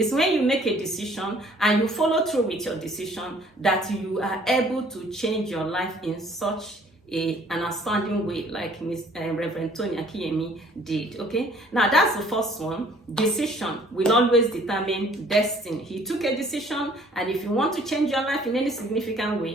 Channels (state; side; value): normal; both; correlation 0.57